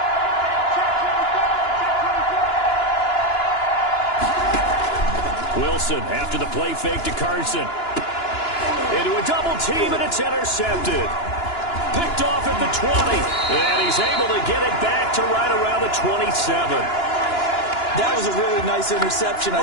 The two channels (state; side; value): late; right; 2.9 ms